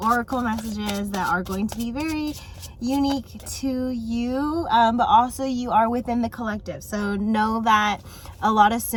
messages that are going to be very unique to you, but also you are within the collective. So know that a lot of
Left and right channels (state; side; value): identical; both; correlation 1.00